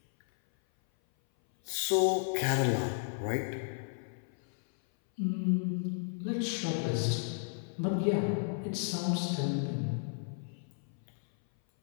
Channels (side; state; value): right; silent; 55 dB below the other